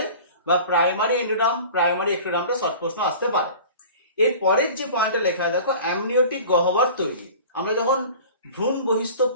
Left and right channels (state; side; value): inverted; both; correlation -0.41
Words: বা প্রাইমারি এন্ডোডার্ম, প্রাইমারি এক্টোডার্মটা শর্ট প্রশ্ন আসতে পারে। এর পরের যে পয়েন্টটা লেখা দেখো অ্যামনিওটিক গহ্বর তৈরি। আমরা যখন ভ্রূণ বহিস্থ